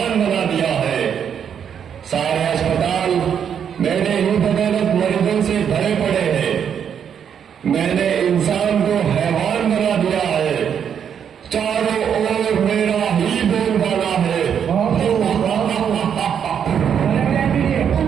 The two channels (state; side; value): quieter; left; 8.1 dB